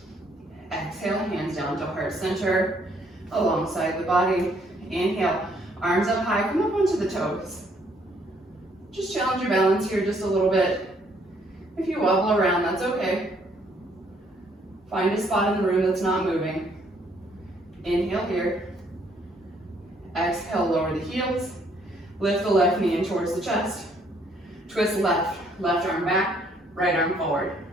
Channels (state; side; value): normal; both; correlation 0.67